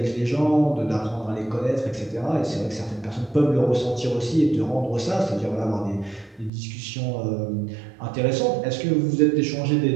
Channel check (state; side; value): drops out; left; at 6.5 s